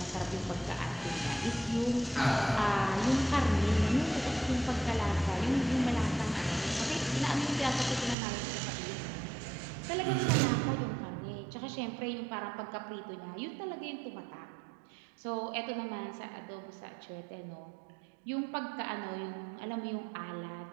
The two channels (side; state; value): left; drops out; at 8.2 s